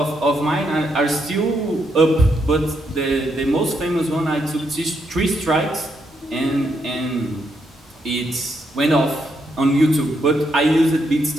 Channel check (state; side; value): normal; both; correlation 0.78